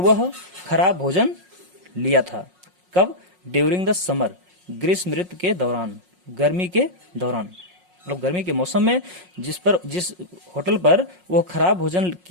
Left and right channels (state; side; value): late; left; 5.5 ms